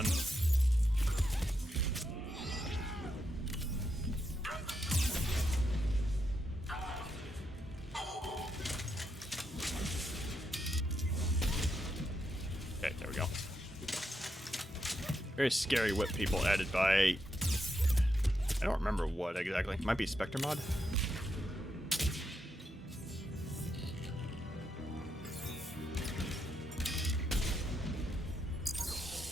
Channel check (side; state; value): both; normal; correlation 0.82